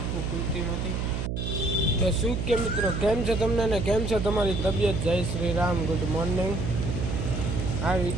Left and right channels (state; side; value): noise; right; hum, 2 dB below the sound